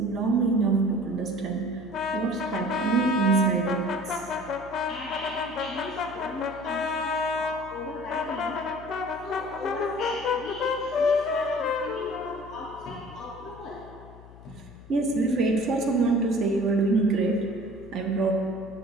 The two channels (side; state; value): left; noise; hum, 19 dB below the sound